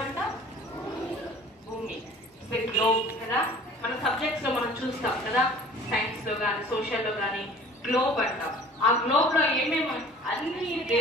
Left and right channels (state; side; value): normal; both; correlation 0.47